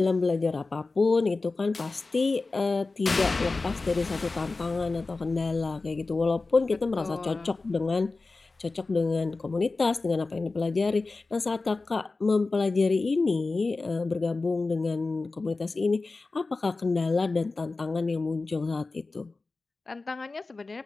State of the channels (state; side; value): quieter; right; 3.6 dB